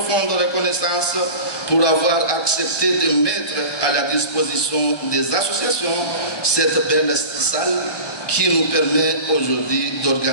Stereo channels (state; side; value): late; right; 1.2 ms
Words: reconnaissance pour avoir accepté de mettre à la disposition des associations cette belle salle qui nous permet aujourd'hui